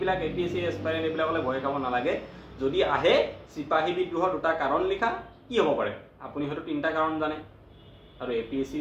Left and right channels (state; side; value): identical; both; correlation 1.00